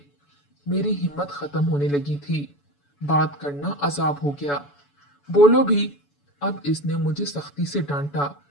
मेरी हिम्मत खत्म होने लगी थी। बात करना अजाब हो गया। बोलो भी। अब इसने मुझे सख्ती से डांटा,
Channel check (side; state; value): right; late; 7.0 ms